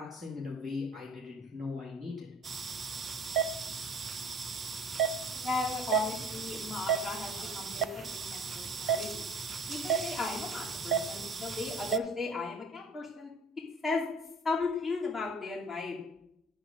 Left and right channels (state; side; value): normal; both; correlation 0.49